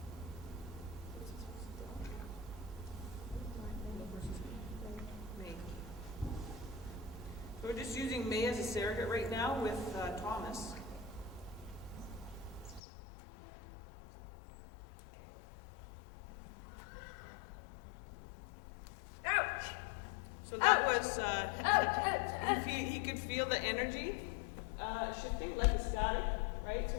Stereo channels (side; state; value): right; drops out; at 12.8 s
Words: So we're just using May as a surrogate right now with Thomas. So that was, he could feel the energy shifting like a static, right?